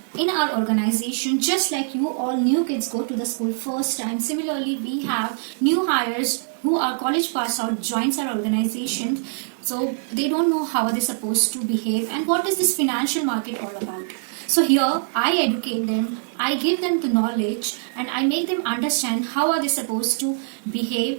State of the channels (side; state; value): left; silent; 63 dB below the other